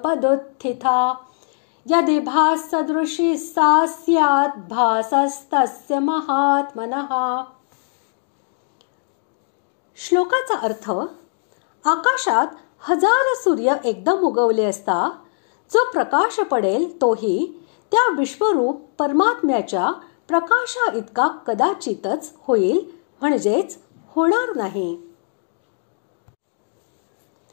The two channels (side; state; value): right; silent; digital silence